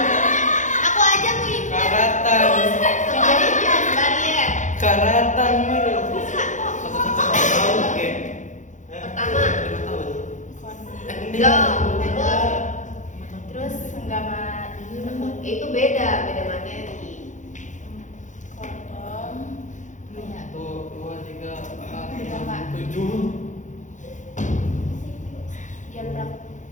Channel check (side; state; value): right; late; 0.36 ms